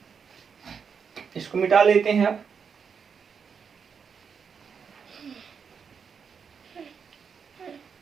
इसको मिटा लेते हैं। अब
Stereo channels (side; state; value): left; quieter; 6.4 dB